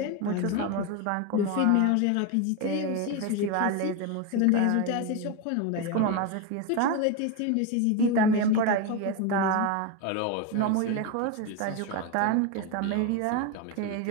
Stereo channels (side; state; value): both; different; correlation 0.03